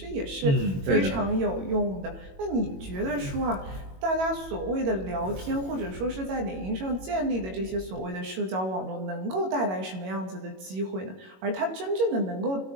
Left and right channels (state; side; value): late; left; 21 ms